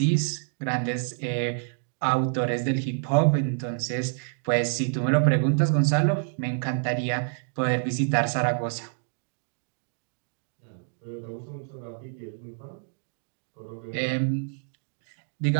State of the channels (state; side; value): silent; left; digital silence